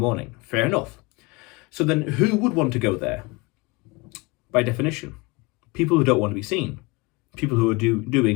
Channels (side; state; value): right; quieter; 25.4 dB